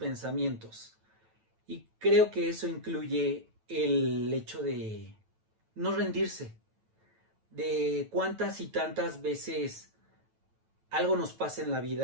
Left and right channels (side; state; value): left; late; 9.1 ms